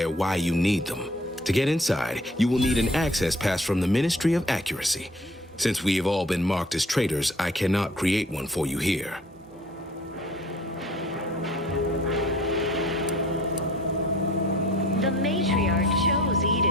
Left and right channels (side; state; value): both; normal; correlation 0.53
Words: why you need them. To get inside, you will need an access pass from the Ministry of Accuracy. Since we have all been marked as traitors, I cannot create one for you here. The matriarch chose